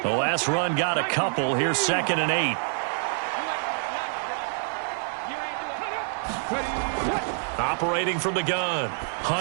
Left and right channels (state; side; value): silent; left; digital silence